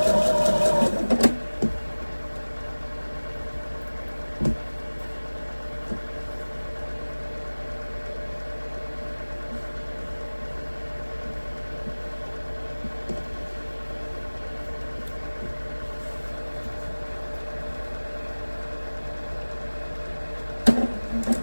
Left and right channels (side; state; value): both; inverted; correlation -1.00